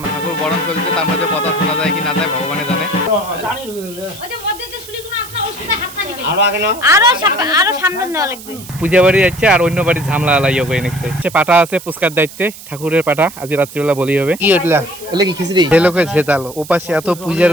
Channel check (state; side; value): noise; right; hiss, 16 dB below the sound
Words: ঠাকুর বরণ চলছে, তার মধ্যে কথা শোনা যায় কি না যায় ভগবানে জানে। পূজা বাড়ি যাচ্ছে আর অন্য বাড়ি ঝামলা লাইয়া করে নিচ্ছে। পাটা আছে পুস্কার দায়িত্বে, ঠাকুরের পাটা আজ রাত্রিবেলা বলি হবে। কি ওটলা এলে কি খিচড়ি লোকে ঝেতালো ওপাশে এত পূজার